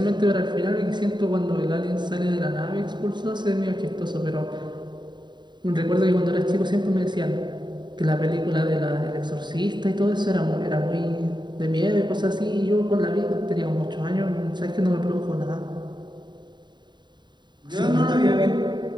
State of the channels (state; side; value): late; left; 0.22 ms